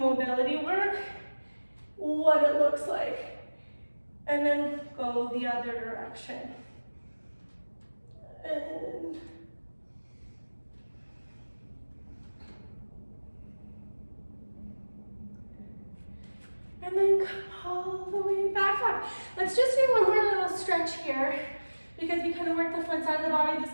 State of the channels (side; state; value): both; inverted; correlation -1.00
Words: mobility work, what it looks like. And then go the other direction. And then come all the way back up. Let's just do one more little stretch here because we kind of work the front side of the body, the